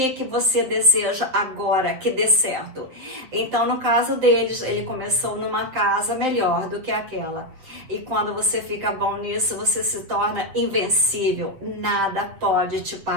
você deseja agora que dê certo? Então, no caso deles, ele começou numa casa melhor do que aquela. E quando você fica bom nisso, você se torna invencível. Nada pode te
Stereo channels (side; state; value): left; late; 7.9 ms